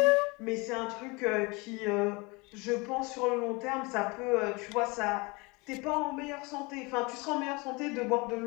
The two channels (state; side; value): quieter; right; 26.7 dB